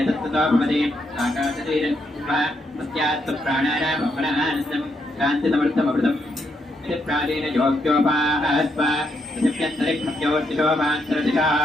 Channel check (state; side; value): normal; both; correlation 0.78